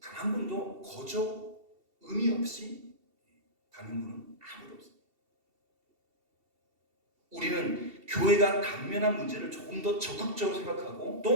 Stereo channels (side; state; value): left; late; 2.7 ms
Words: 한 분도 거저 의미 없이 다닌 분은 아무도 없어요. 우리는 교회가 당면한 문제를 조금 더 적극적으로 생각하고